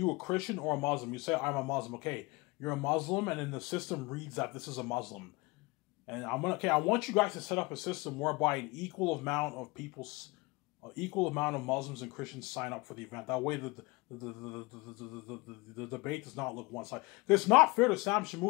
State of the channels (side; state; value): right; quieter; 24.9 dB